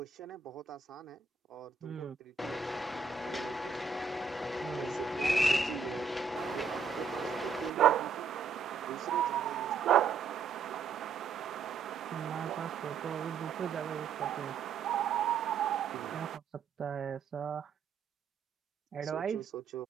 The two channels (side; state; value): left; quieter; 5.6 dB